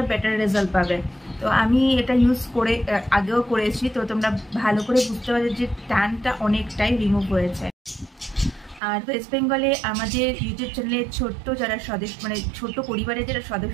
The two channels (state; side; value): drops out; left; at 8.8 s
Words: বেটার রেজাল্ট পাবে। তো আমি এটা ইউজ করে আগেও করেছি, তো তোমরা ভালো করে বুঝতে পারছো যে ট্যানটা অনেকটাই রিমুভ হয়েছে। আর ওয়েস্ট বেঙ্গলে আমাদের ইউটিউব চ্যানেলে ছোট্ট যারা সদস্য ছোট পরিবারের যারা